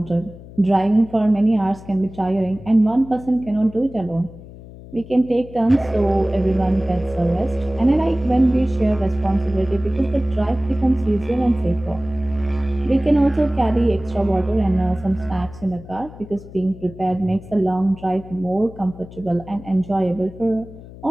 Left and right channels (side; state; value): left; noise; hum, 17 dB below the sound